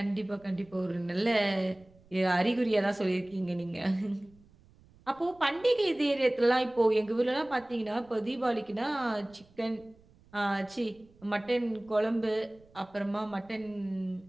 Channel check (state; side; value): noise; right; rumble, 28 dB below the sound